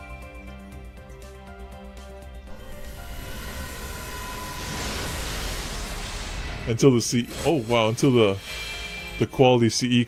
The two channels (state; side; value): identical; both; correlation 1.00